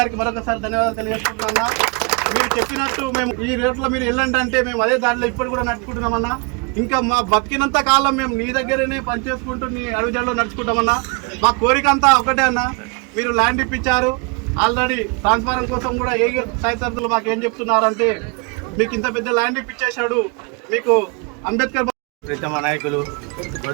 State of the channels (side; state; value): left; quieter; 31.4 dB